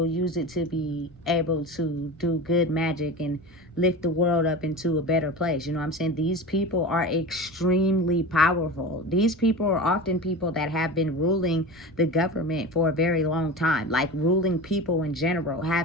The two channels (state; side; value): normal; both; correlation 0.29